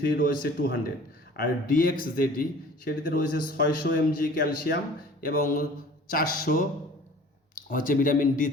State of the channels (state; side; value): normal; both; correlation 0.47